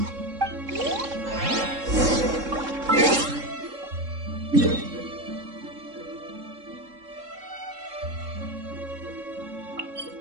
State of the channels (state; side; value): late; left; 3.7 ms